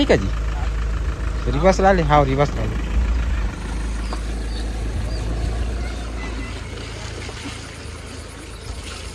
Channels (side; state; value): both; identical; correlation 1.00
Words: का जी रिवर्स ला ले हाँ रिवर्स ला ले